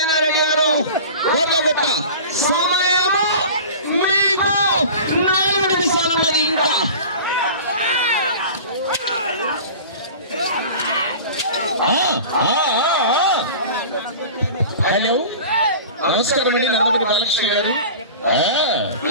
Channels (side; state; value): both; inverted; correlation -0.37